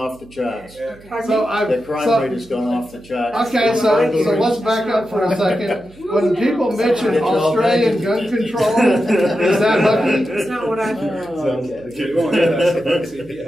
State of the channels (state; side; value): noise; right; hum, 24 dB below the sound